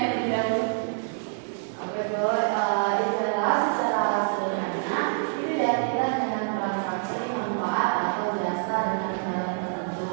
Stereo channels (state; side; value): silent; left; 60 dB below the other